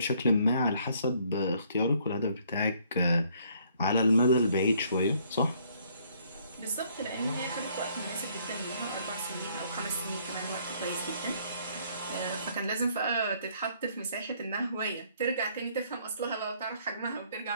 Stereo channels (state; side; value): inverted; both; correlation -0.64